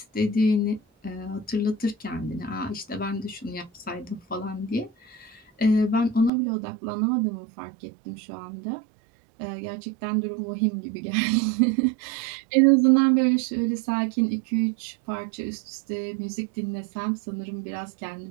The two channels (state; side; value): drops out; left; at 6.3 s